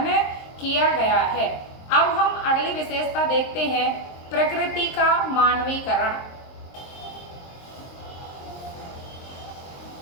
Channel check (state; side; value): late; right; 23 ms